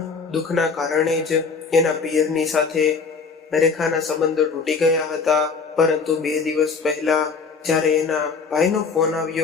દુઃખના કારણે જ એના પિયરની સાથે રેખાના સંબંધો તૂટી ગયા હતા। પરંતુ 2 દિવસ પહેલા જ્યારે એના ભાઈનો ફોન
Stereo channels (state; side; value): quieter; right; 5.0 dB